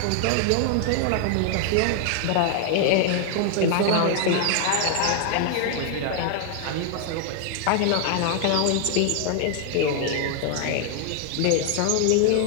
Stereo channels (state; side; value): different; both; correlation 0.00